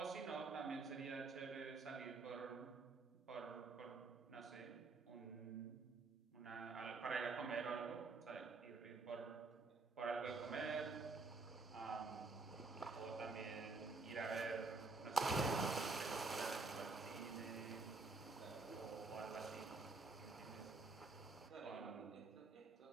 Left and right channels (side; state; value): left; quieter; 3.9 dB